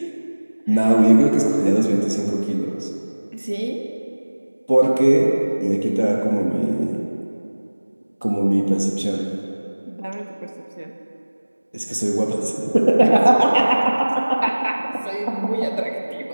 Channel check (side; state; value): both; inverted; correlation -1.00